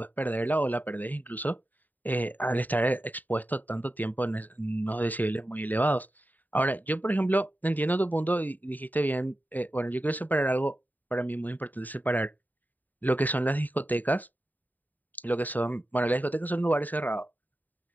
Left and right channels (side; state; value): right; late; 0.086 ms